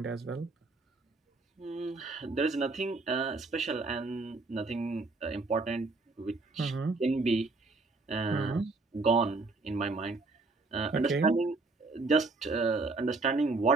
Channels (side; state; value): left; quieter; 3.6 dB